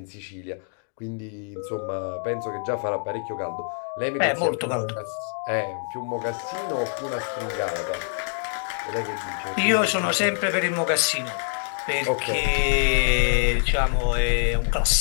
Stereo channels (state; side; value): silent; right; digital silence